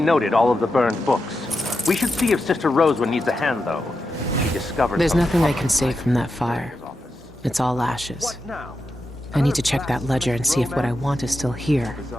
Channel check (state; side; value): normal; both; correlation 0.88